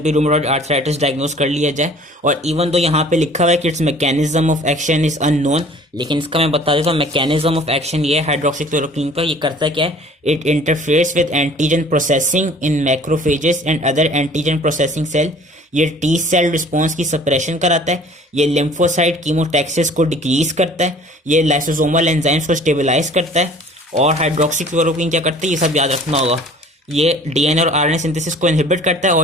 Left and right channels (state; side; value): normal; both; correlation 0.50